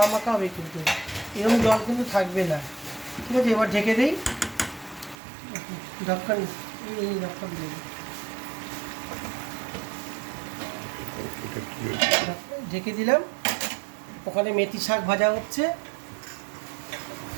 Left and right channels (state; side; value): drops out; left; at 5.2 s